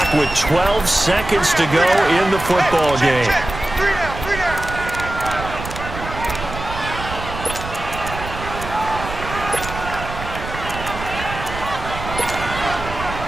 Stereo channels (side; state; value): right; noise; rumble, 9 dB below the sound